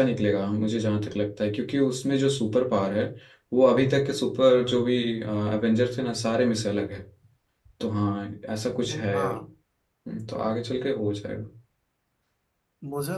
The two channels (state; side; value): identical; both; correlation 1.00